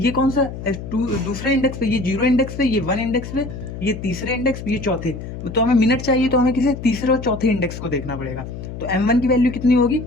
कौन सा दूसरे इंडेक्स पे, ये 0 इंडेक्स पे, ये 1 इंडेक्स पे, ये तीसरे इंडेक्स पे, ये चौथे, तो हमें मिनट चाहिए तो हमें किसी तीसरे और चौथे इंडेक्स को देखना पड़ेगा। तो m1 की वैल्यू कितनी होगी,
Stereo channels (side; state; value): left; noise; hum, 9 dB below the sound